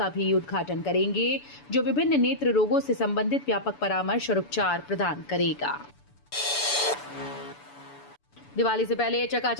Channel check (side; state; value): right; late; 7.0 ms